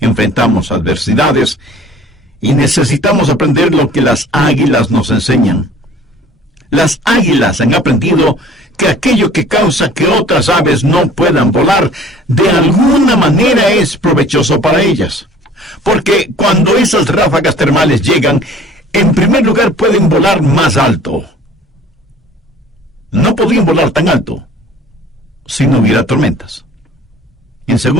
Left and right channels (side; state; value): both; normal; correlation 0.50